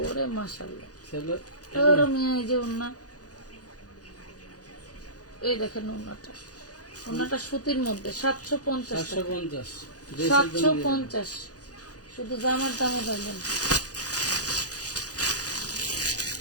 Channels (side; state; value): right; late; 0.68 ms